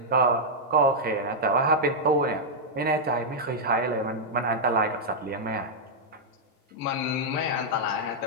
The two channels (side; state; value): both; normal; correlation -0.07